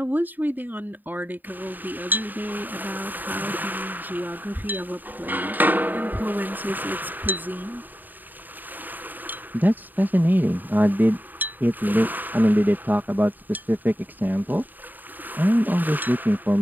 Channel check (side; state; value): left; late; 0.088 ms